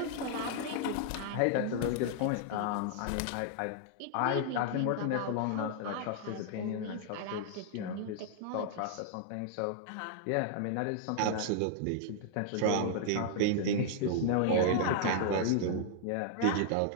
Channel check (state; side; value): different; both; correlation -0.01